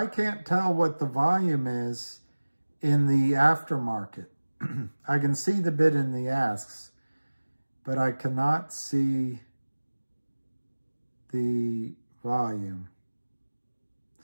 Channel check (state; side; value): inverted; both; correlation -1.00